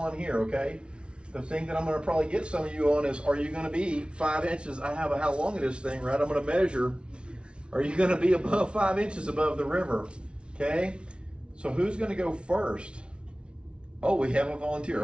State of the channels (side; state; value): left; late; 0.058 ms